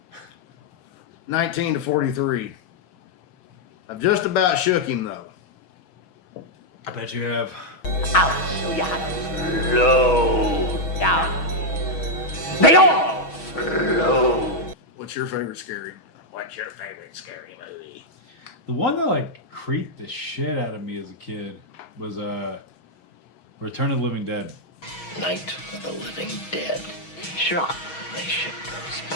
19 to 43. I've just about shook him though. I bet you have. I'll show you how to slow down. They all slow. What's your favorite scary? What's your favorite scary movie? The one that like creeped the shit out of me as a kid was Return of the Living Dead. Night of the Living Dead. Sure, they ship those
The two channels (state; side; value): late; right; 6.2 ms